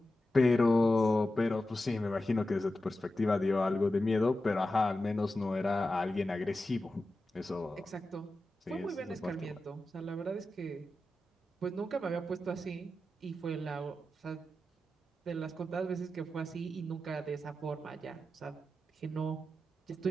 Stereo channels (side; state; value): both; normal; correlation 0.92